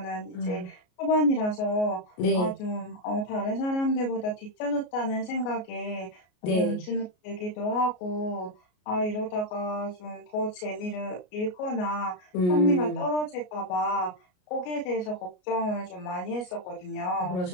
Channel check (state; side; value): late; right; 33 ms